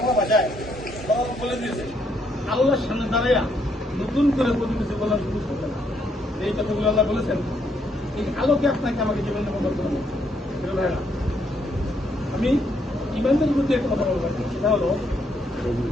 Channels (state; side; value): normal; both; correlation 0.73